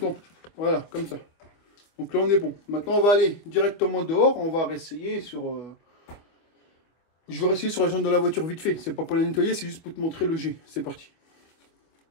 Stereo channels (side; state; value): right; late; 24 ms